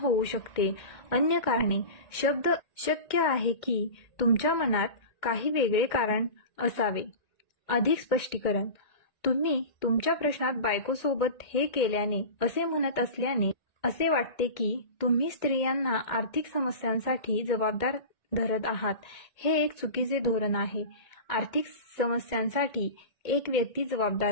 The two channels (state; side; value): late; right; 2.1 ms